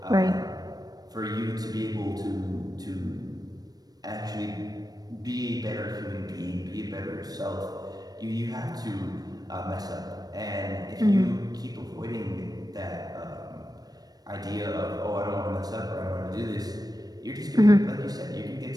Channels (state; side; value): late; left; 0.19 ms